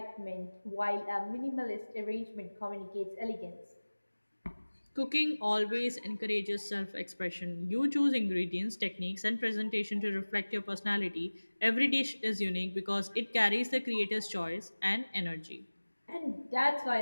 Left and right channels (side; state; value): both; inverted; correlation -1.00